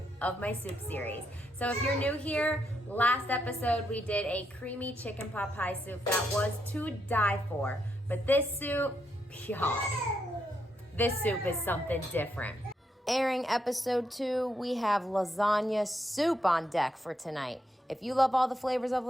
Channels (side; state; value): both; normal; correlation 0.79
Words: of my soup series. So if you're new here, last episode we did a creamy chicken pot pie soup that was to die for. But this soup, y'all, this soup is something different. Airing episode 2, we have lasagna soup on deck for tonight. If you love all the flavors of